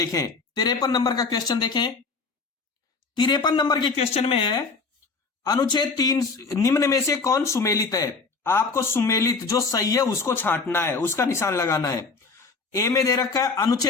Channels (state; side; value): quieter; right; 4.4 dB